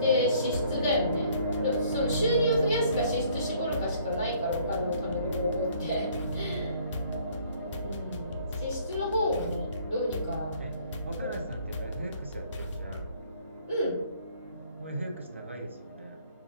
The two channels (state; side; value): inverted; both; correlation -0.59